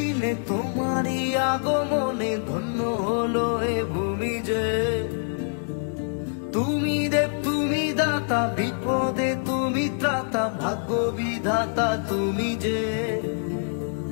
তোমারই আগমনে ধন্য হলো এ ভূমি যে। তুমি দেব তুমি দাতা, বিপদে তুমি ত্রাতা, ভাগ্য বিধাতা তুমি যে।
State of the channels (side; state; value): right; silent; digital silence